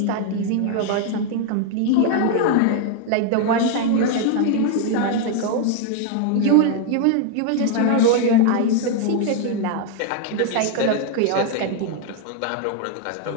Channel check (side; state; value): both; different; correlation 0.00